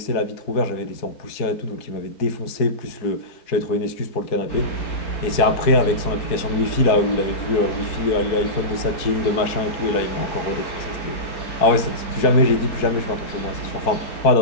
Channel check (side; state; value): right; late; 4.6 ms